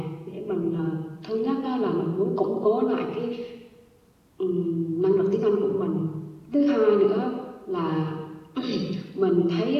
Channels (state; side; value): identical; both; correlation 1.00